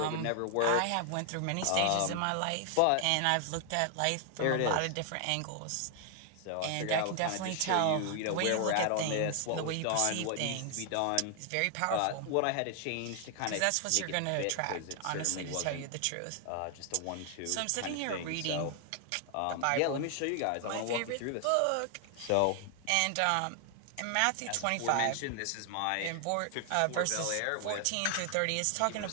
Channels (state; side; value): different; both; correlation 0.00